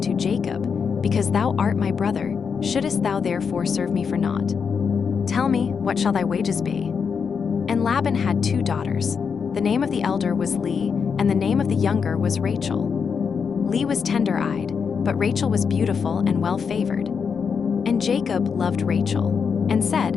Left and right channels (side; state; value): right; quieter; 6.2 dB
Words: Jacob, Because thou art my brother, shouldest thou therefore serve me for naught? Tell me, what shall thy wages be? And Laban had 2 daughters. The name of the elder was Leah, and the name of the younger was Rachel. Leah was tender-eyed, but Rachel was beautiful and well-favored. And Jacob loved Rachel, and said,